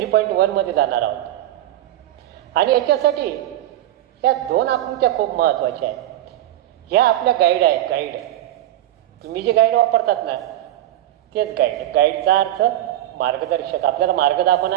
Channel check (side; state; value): left; quieter; 13.8 dB